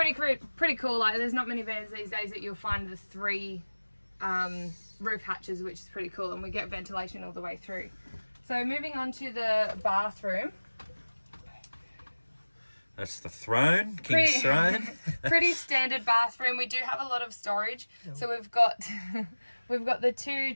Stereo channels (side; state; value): both; inverted; correlation -1.00